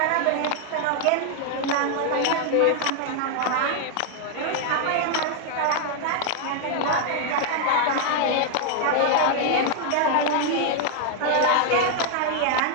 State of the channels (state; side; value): different; both; correlation 0.00